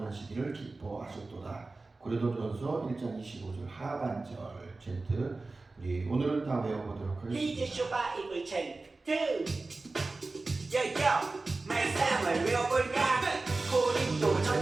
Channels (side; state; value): left; quieter; 3.5 dB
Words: 기뻐하셨도다. 고린도전서 1장 25절 하반절 챈트 우리 오늘은 다 외워보도록 하겠습니다. 이제 바이블 챈트 야야 말씀을 외워볼까